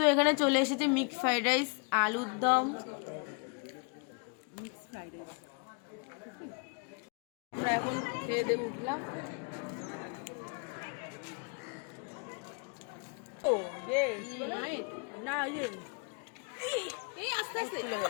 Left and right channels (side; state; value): right; quieter; 36.5 dB